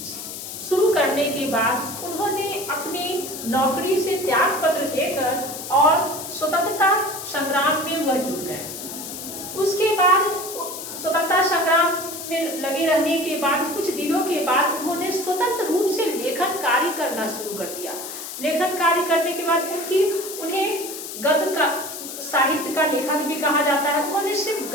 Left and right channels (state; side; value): noise; left; hiss, 9 dB below the sound